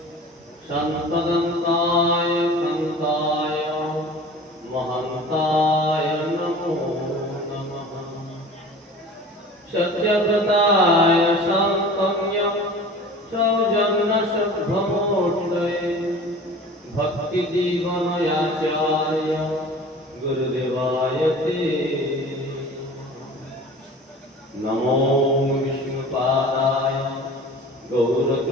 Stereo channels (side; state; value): both; normal; correlation 0.41